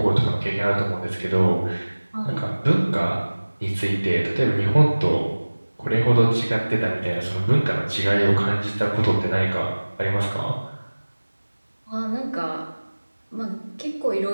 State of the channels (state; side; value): inverted; both; correlation -1.00